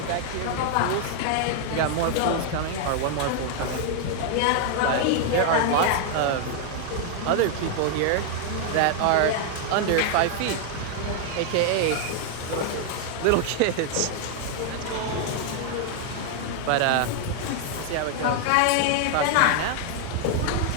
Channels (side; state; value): both; different; correlation 0.00